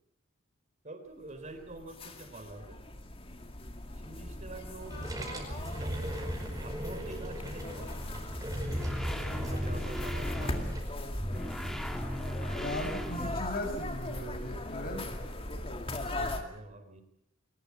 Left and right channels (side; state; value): both; normal; correlation 0.67